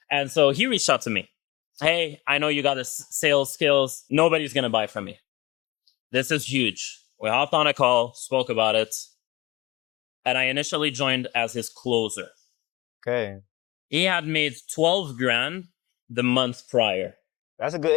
And so he reached out to me. Hey, I know you got the sales skills. Nobody's going to buy from me. This is huge. We hopped on a call, spoke about it. And I initially joined as his closer. Okay. He had made 12 grand the month prior. That's a good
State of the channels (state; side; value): quieter; right; 20.2 dB